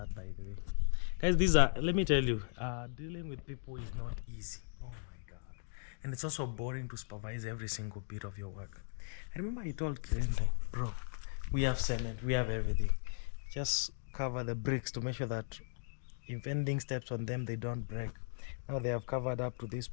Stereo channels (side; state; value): right; silent; digital silence